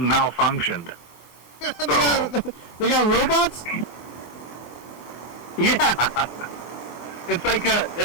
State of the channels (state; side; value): late; right; 23 ms